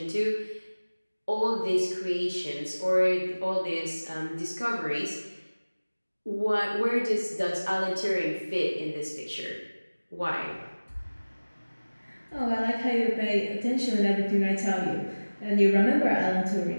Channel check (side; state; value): both; inverted; correlation -1.00